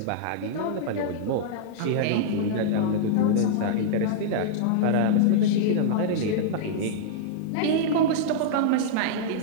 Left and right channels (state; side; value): different; both; correlation -0.02